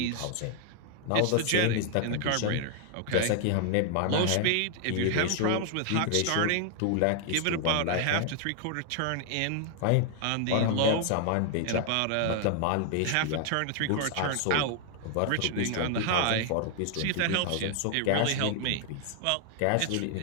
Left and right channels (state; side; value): different; both; correlation 0.00